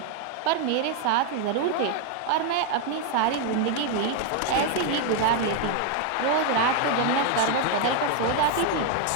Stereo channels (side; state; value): both; different; correlation 0.01